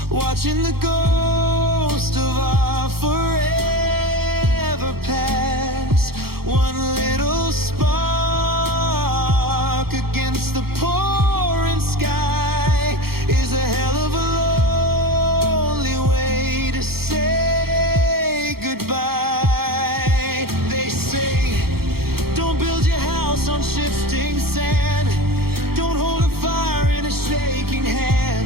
watching the ghost of our forever pass. One little spark against the pouring sky is a hell of a lonely way to say goodbye. They say, don't build your house on shifting sand, don't hold a fire in a shaking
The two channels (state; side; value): late; left; 0.94 ms